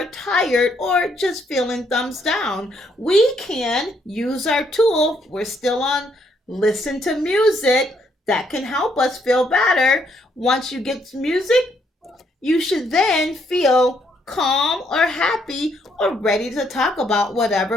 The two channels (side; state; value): both; normal; correlation 0.71